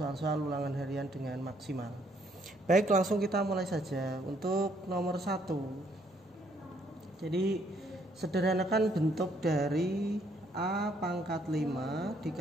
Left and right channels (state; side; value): normal; both; correlation 0.68